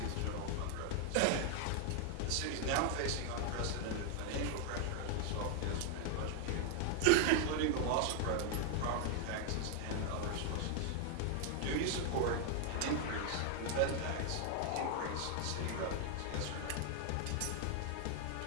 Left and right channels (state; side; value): different; both; correlation 0.00